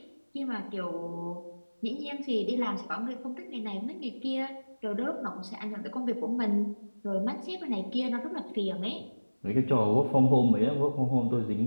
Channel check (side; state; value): both; inverted; correlation -1.00